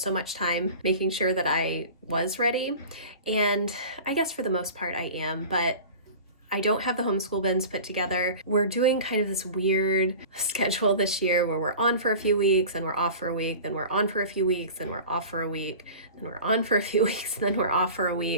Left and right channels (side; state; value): both; inverted; correlation -0.38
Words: much time making sure that I was ready. And I guess for the most part I am, but I don't have the homeschool bins put together. We're doing kind of this weird schedule this year where we're on for a few weeks and we're off for a week, then we're on for a few weeks, then we're off for a week, then we're on for a few weeks, then we're off for a